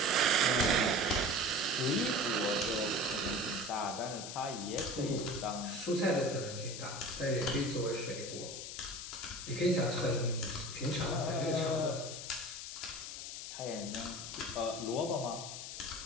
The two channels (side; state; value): left; noise; hiss, 8 dB below the sound